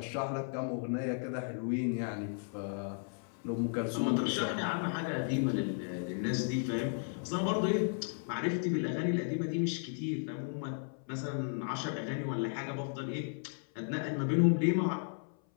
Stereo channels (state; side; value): silent; right; 55 dB below the other